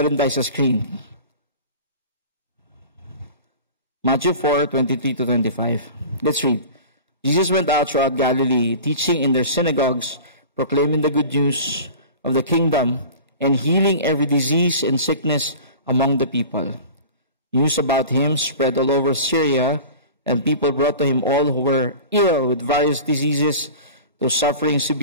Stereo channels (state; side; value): inverted; both; correlation -0.38